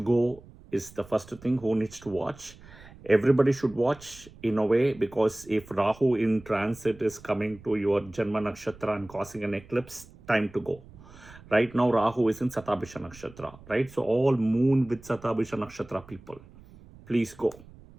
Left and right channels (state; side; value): noise; right; rumble, 21 dB below the sound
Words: go is the first thing. Who needs to watch? Everybody should watch in a way, because if Rahu in transit is coming to your Janma Nakshatra and causing an eclipse, time to go. Right now, Rahu is in Satabhisha Nakshatra. Right. So all moon with Satabhisha Nakshatra people, please go.